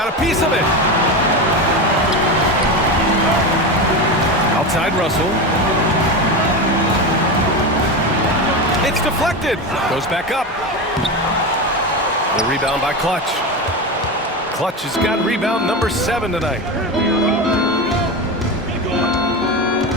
a piece of it. Outside Russell. It's deflected. Goes back up. The rebound by Clutch. Clutch has got rebound number 7 tonight.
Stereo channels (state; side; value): normal; both; correlation 0.20